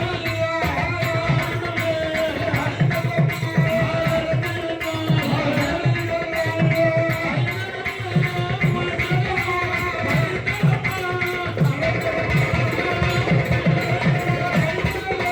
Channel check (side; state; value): both; identical; correlation 1.00